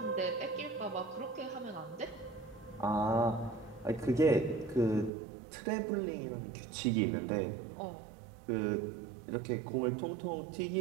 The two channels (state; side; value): drops out; left; at 5.1 s